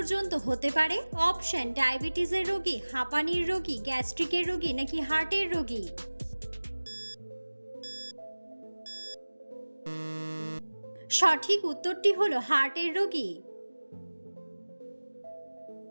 হতে পারে? অপশন: ডায়াবেটিসের রোগী, হাঁপানির রোগী, গ্যাস্ট্রিকের রোগী নাকি হার্টের রোগী? সঠিক উত্তরটি হলো হার্টের রোগী।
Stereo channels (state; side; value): inverted; both; correlation -1.00